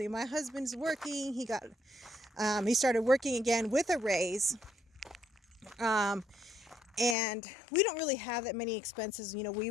my husband's working. He started working again with a raise. And we don't really have that many expenses. We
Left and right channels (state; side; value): drops out; right; at 7.2 s